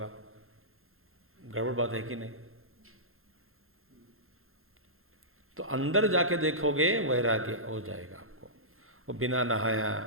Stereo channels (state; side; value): late; left; 0.61 ms